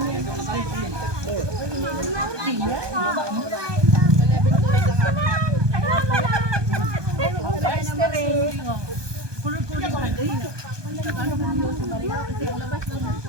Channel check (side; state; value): left; late; 1.2 ms